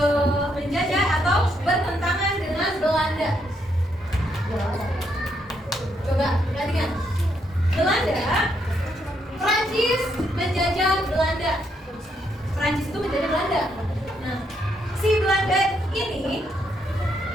menjajah atau bertentangan dengan Belanda. Coba perhatikan. Prancis menjajah Belanda. Prancis itu menjajah Belanda. Nah, si Belanda ini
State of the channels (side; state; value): both; normal; correlation 0.76